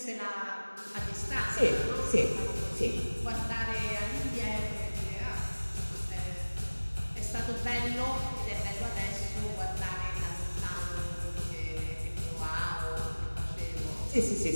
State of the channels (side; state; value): both; inverted; correlation -1.00